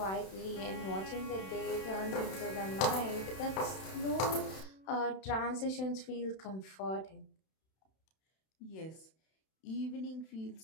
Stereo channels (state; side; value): late; right; 31 ms